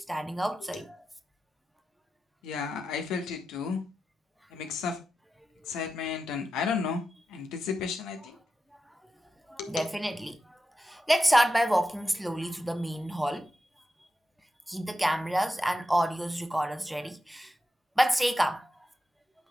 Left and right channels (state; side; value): normal; both; correlation 0.90